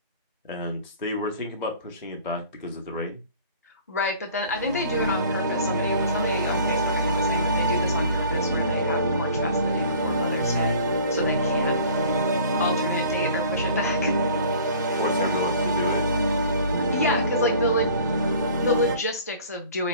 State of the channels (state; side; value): inverted; both; correlation -0.48